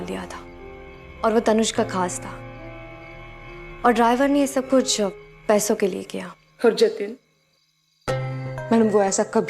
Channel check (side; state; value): both; identical; correlation 1.00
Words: दिया था और वो तनुज का खास था, और ड्राइवर ने ये सब कुछ पैसों के लिए किया। और जतिन मैडम, वो ऐसा